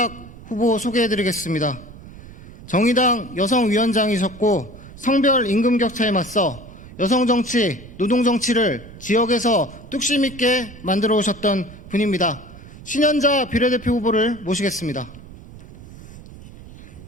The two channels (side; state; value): right; noise; rumble, 17 dB below the sound